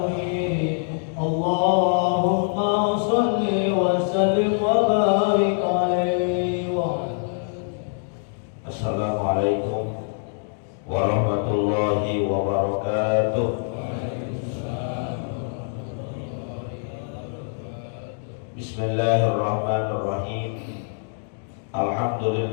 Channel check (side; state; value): right; silent; digital silence